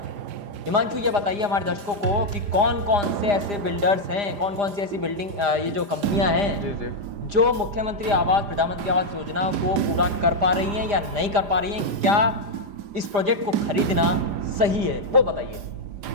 हिमांशु ये बताइए हमारे दर्शकों को कि कौन कौन से ऐसे बिल्डर्स हैं, कौन कौन सी ऐसी बिल्डिंग ये जो कंपनियां हैं जो मुख्यमंत्री आवास प्रधानमंत्री आवास योजना को पूरा कर पा रही हैं या नहीं कर पा रही हैं, क्या इस प्रोजेक्ट को खरीदना सही है, वो बताइए।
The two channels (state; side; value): late; left; 4.9 ms